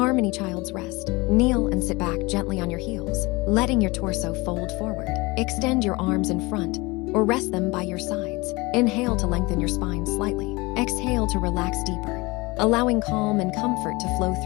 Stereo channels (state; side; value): quieter; right; 23.8 dB